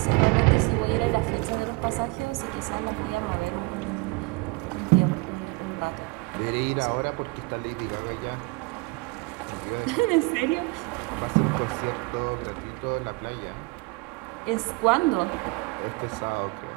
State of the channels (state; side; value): quieter; left; 25.9 dB